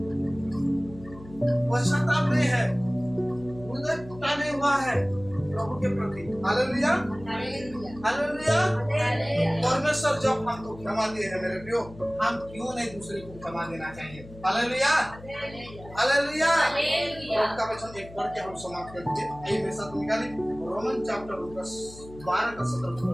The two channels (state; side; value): noise; left; hum, 18 dB below the sound